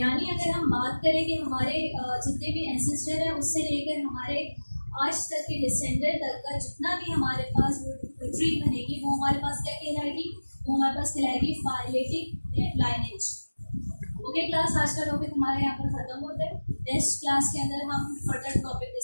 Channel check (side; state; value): both; inverted; correlation -1.00